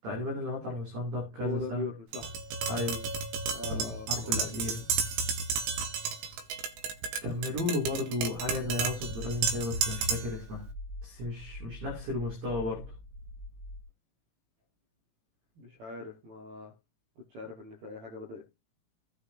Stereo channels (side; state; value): left; late; 18 ms